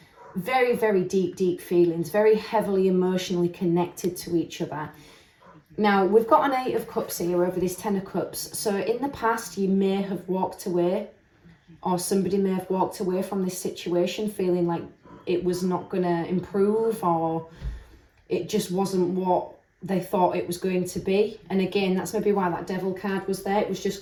very, very deep feelings, very heavily emotionally connected to each other. Now, we've got an Eight of Cups here over this Ten of Cups. So in the past, you may have walked away, or somebody may have walked away from this situation feeling like it was not going to improve, or it just wasn't what they thought it was going to be. And again, that's maybe why that Devil card was there. It was just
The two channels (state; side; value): identical; both; correlation 1.00